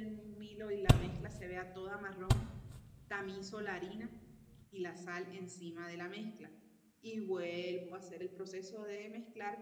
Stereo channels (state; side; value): identical; both; correlation 1.00